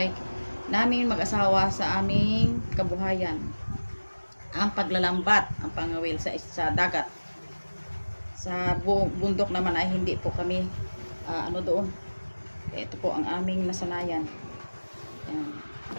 namin mag-asawa sa aming kabuhayan. Ang paglalambat, ang pangawil sa dagat. Sa bundok naman ay hindi po kami doon. Ito po ang aming nasanayan. Ayan.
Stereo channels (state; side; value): inverted; both; correlation -1.00